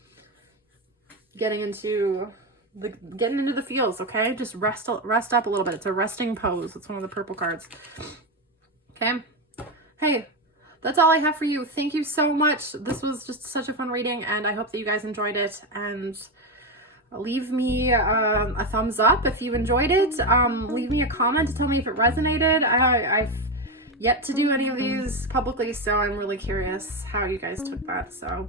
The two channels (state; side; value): normal; both; correlation 0.12